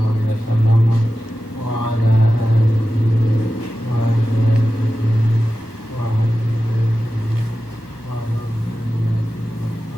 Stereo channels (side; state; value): right; late; 1.2 ms